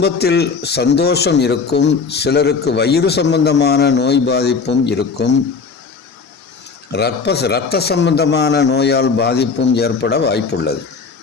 சந்தோஷம் இருக்கும், சிலருக்கு வயிறு சம்பந்தமான நோய் பாதிப்பும் இருக்கும், இரத்த சம்பந்தமான நோயால் பாதிப்பும் ஏற்பட வாய்ப்புள்ளது.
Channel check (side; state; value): right; quieter; 5.1 dB